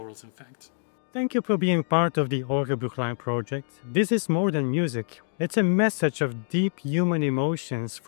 in fact. Thank you for being part of the Orgelbüchlein project. This is more than music. It's a message of deep human emotions,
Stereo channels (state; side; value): silent; right; digital silence